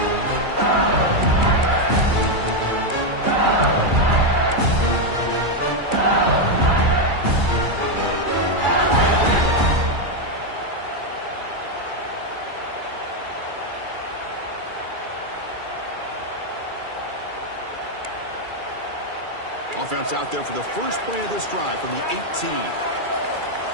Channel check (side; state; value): left; late; 2.3 ms